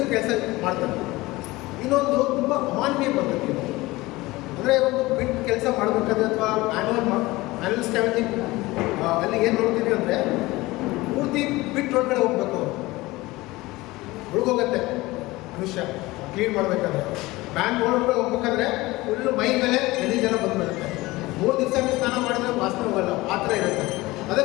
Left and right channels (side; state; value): right; quieter; 20.2 dB